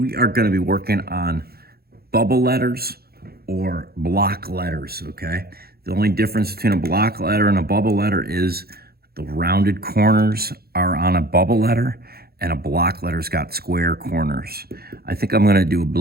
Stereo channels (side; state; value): left; late; 0.45 ms